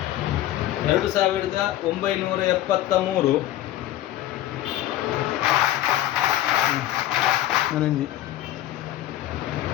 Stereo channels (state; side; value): quieter; right; 13.8 dB